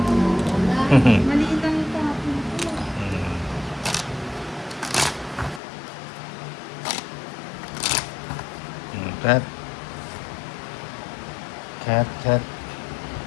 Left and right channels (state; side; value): drops out; right; at 5.6 s